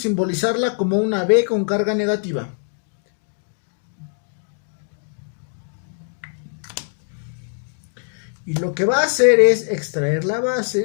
como una B con carga negativa. Y lo que va a hacer es extraer la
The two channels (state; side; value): silent; right; 55 dB below the other